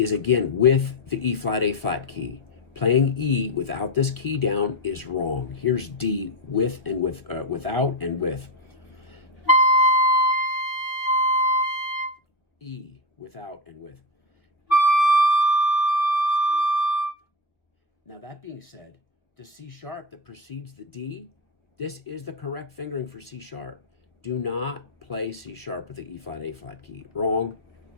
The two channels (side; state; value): right; late; 1.3 ms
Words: again with the E flat, A flat key. Playing E without this key down is wrong. Here's D with and without and with. E without and with. Now that being said, the C sharp that precedes the D, this is the correct fingering for C sharp. Do not play C sharp with the E flat, A flat key. Wrong.